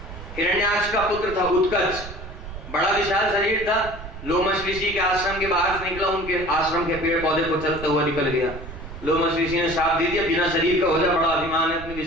हिरण्याक्ष का पुत्र था, उत्कच, बड़ा विशाल शरीर था, लोमश ऋषि के आश्रम के बाहर से निकला, उनके आश्रम के पेड़ पौधे को चलता हुआ निकल गया। लोमश ऋषि ने शाप दे दिया, बिना शरीर का हो जा, बड़ा अभिमान है अपने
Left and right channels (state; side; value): noise; right; rumble, 12 dB below the sound